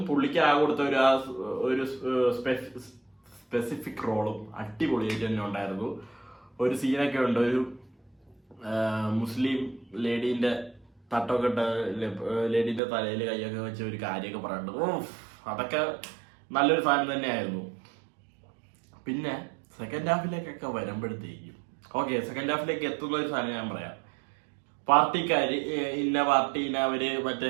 പുള്ളിക്ക് ആ കൊടുത്ത ഒരു സ്പെസിഫിക് റോളും അടിപൊളിയായിട്ട് തന്നെ ഉണ്ടായിരുന്നു. ഒരു സീനൊക്കെ ഉണ്ട്, ഒരു മുസ്ലിം ലേഡീന്റെ തട്ടൊക്കെ ഇട്ട് ലേഡീൻ്റെ തലയിൽ കൈയൊക്കെ വെച്ച് ഒരു കാര്യമൊക്കെ പറയുന്നുണ്ട്. അതൊക്കെ നല്ലൊരു സാധനം തന്നെയായിരുന്നു. പിന്നെ സെക്കൻഡ് ഹാഫിലേക്കൊക്കെ വരുമ്പോഴത്തേക്കും ഓക്കെ, സെക്കൻഡ് ഹാഫിലേക്ക് എത്തുന്ന ഒരു സാധനം ഞാൻ പറയാം. പാർട്ടിക്കാർ ഇന്ന പാർട്ടീനെ അവർ മറ്റേ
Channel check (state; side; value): drops out; left; at 12.8 s